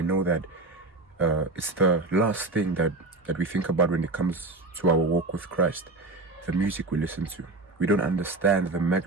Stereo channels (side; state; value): left; quieter; 3.2 dB